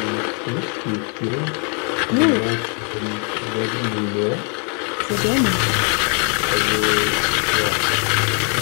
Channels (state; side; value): quieter; right; 39.5 dB